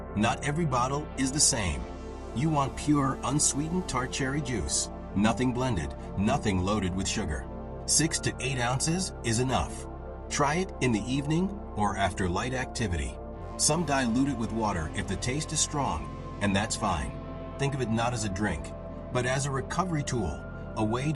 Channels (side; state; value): both; identical; correlation 1.00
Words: Not every bottle is the same. You want pure, unsweetened tart cherry juice. Nothing blended, nothing loaded with sugar. 6 to 8 ounces is enough. Try it in the evening or after light activity. Some dilute it with water if the taste is strong, and that's fine. Think of it not as a drink, but as a recovery tool, a way